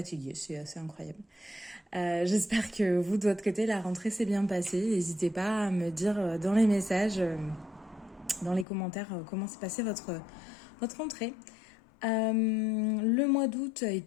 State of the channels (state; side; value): drops out; right; at 8.7 s